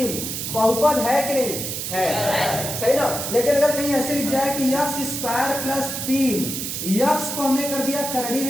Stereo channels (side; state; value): right; noise; hiss, 4 dB below the sound